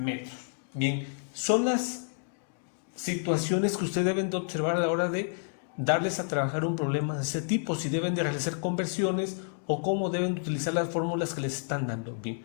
Bien, son las situaciones que ustedes deben de observar a la hora de darles a trabajar un problema de ese tipo, si deben de realizar conversiones o cómo deben utilizar las fórmulas que les están dando. Bien,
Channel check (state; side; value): silent; right; digital silence